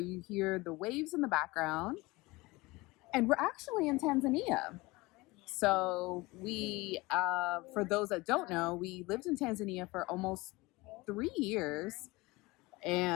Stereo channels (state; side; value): quieter; right; 22.4 dB